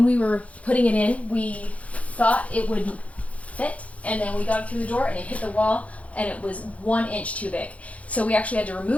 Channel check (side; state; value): right; late; 0.066 ms